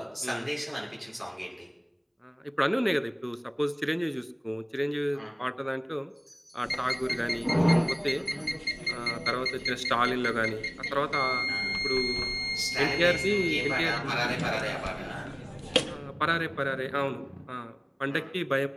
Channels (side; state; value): both; identical; correlation 1.00